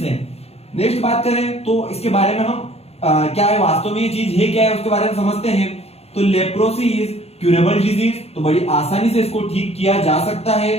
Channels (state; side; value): late; right; 0.30 ms